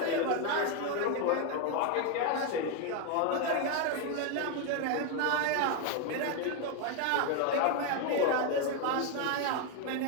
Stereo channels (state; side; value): different; both; correlation 0.01